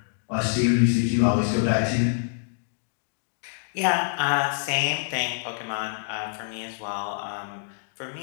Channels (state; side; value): silent; right; digital silence